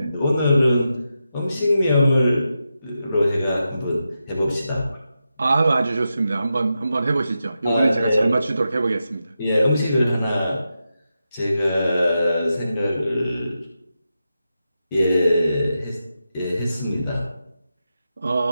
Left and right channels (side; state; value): both; inverted; correlation -0.88